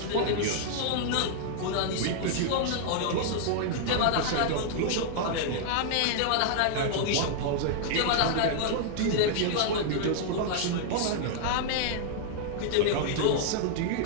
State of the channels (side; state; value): both; different; correlation -0.01